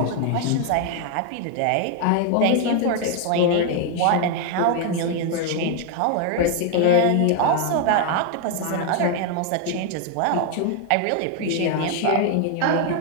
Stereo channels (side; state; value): both; different; correlation 0.00